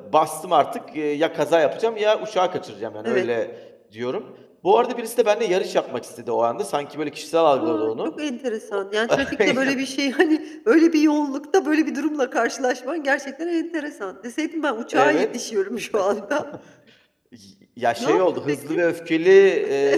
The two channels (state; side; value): identical; both; correlation 1.00